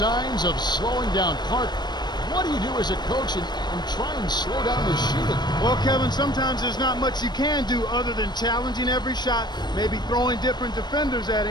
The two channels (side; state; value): right; late; 0.21 ms